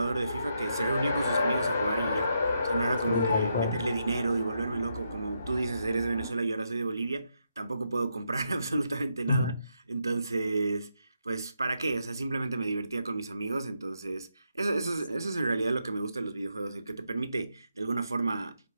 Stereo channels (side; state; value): both; inverted; correlation -0.80